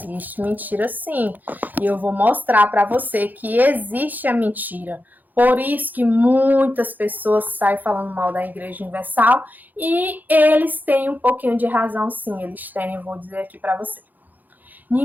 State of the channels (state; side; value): late; left; 0.084 ms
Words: mentira, sim. E eu vou mostrar para você que existe a mentira. Por isso que muitas pessoas saem falando mal da Igreja Universal e eles têm um pouquinho de razão, sim. Eles têm, eu vou dizer aqui para você.